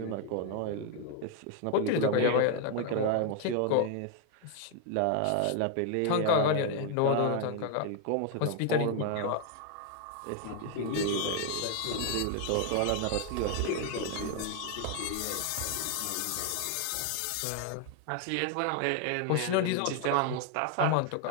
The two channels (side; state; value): both; different; correlation 0.01